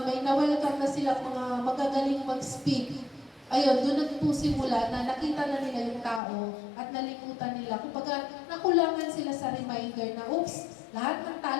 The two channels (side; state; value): right; drops out; at 6.2 s